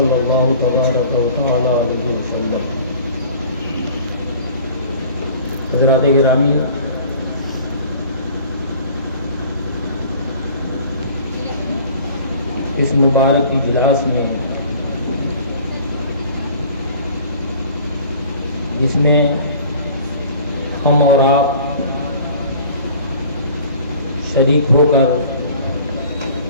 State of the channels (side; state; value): both; inverted; correlation -0.48